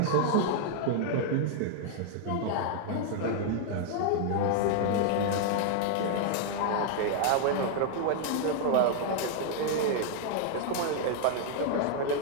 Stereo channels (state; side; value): different; both; correlation 0.00